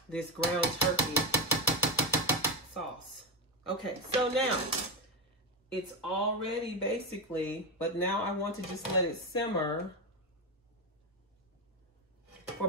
this ground turkey sauce. Okay, so now it's all ready basically, but now I want to just let it simmer for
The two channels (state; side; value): normal; both; correlation 0.11